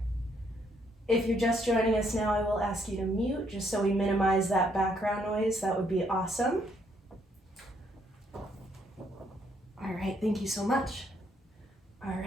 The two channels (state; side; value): normal; both; correlation 0.71